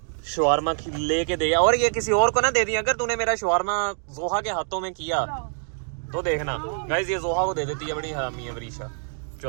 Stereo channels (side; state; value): left; silent; 60 dB below the other